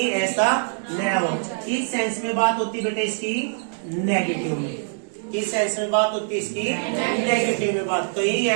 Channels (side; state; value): left; silent; digital silence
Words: ऐसा न हो। किस सेंस में बात होती है बेटा इसकी? नेगेटिव में। किस सेंस में बात होती है इसकी? नेगेटिव में बात, कहीं